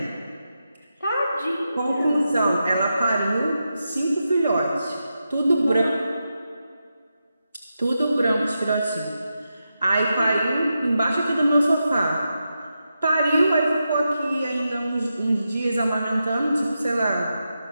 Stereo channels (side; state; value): both; inverted; correlation -0.88